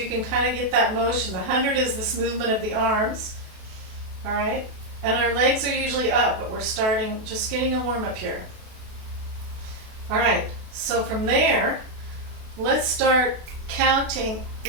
can kind of get that motion. The 100 is this movement of the arms, all right? And our legs are usually up, but we're starting, just getting a warm up here. All right, so from there, let's start counting.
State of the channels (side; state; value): left; late; 32 ms